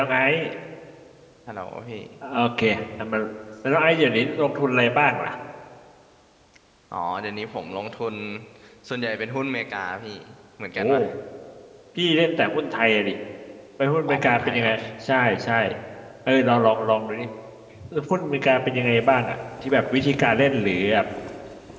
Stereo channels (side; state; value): both; identical; correlation 1.00